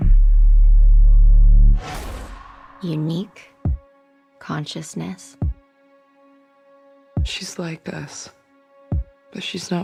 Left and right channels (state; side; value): identical; both; correlation 1.00